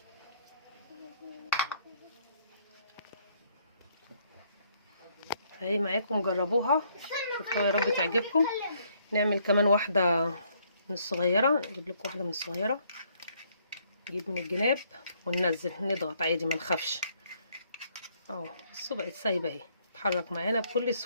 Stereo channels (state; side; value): inverted; both; correlation -0.68